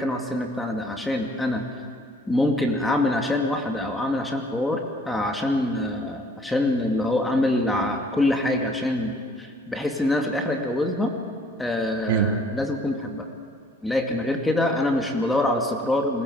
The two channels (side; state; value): both; normal; correlation 0.58